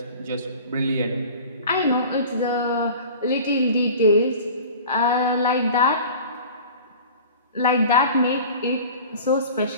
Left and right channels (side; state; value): both; inverted; correlation -0.41